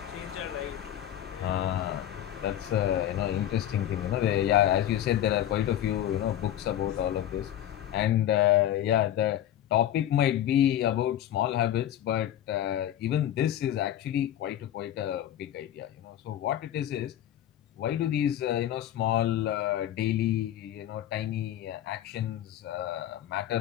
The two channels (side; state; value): right; quieter; 11.8 dB